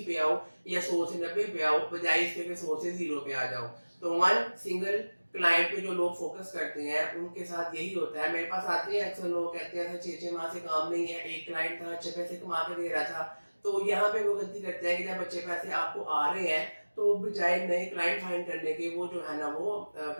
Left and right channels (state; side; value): inverted; both; correlation -1.00